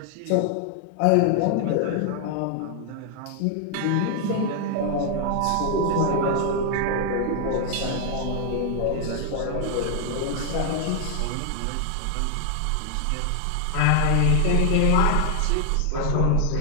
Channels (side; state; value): both; different; correlation 0.00